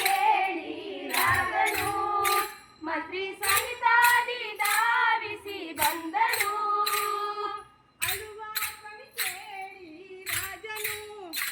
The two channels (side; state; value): both; identical; correlation 1.00